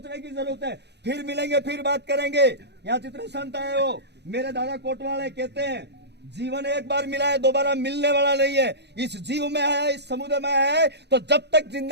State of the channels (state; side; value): late; left; 0.49 ms